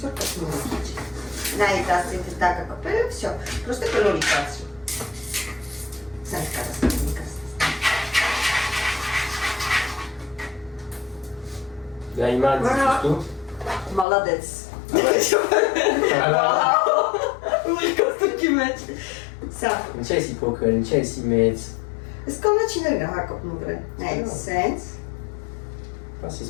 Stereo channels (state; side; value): drops out; right; at 14.1 s